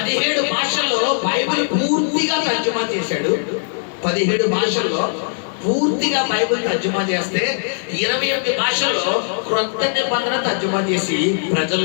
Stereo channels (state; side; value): silent; right; digital silence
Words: భాషల్లో బైబిల్ పూర్తిగా తర్జుమా చేశాడు. 17 భాషల్లో పూర్తిగా బైబిల్ తర్జుమా చేస్తే 28 భాషల్లో క్రొత్త నిబంధన తర్జుమా చేసి